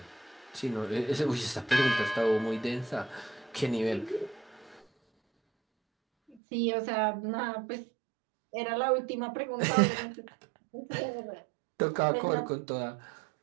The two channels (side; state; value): left; drops out; at 6.4 s